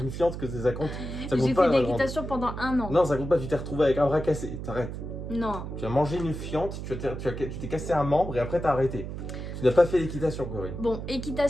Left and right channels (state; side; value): noise; right; hum, 7 dB below the sound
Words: fiente que ça compte. Ça compte J'ai pas, fait de la grande. l'équitation pendant 1 an. Non, ça compte pas, tu t'es retrouvé avec un bras cassé. T'arrêtes. Non. Tu as mangé une fiente, tu t'es cassé un membre et après t'as arrêté. Tu n'as pas fait d'équitation, Corinne. Bon,